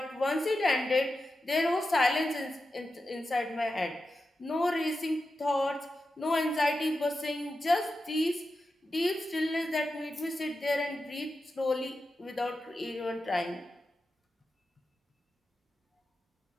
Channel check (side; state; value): both; normal; correlation 0.91